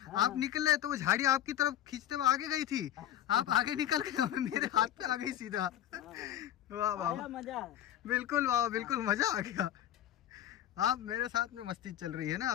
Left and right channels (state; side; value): quieter; right; 11.7 dB